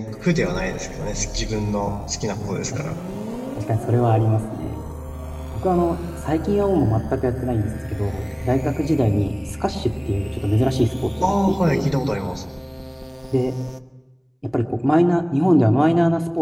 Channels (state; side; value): identical; both; correlation 1.00